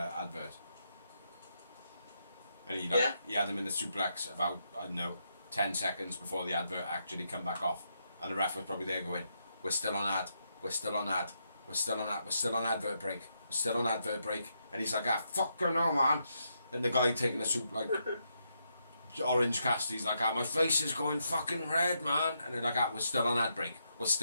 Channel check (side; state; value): both; inverted; correlation -0.80